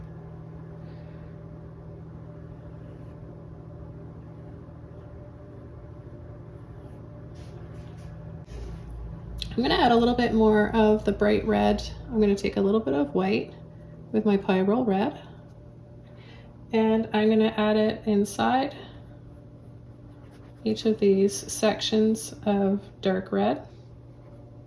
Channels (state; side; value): identical; both; correlation 1.00